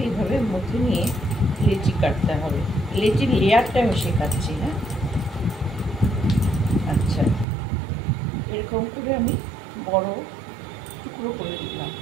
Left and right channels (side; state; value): left; drops out; at 7.5 s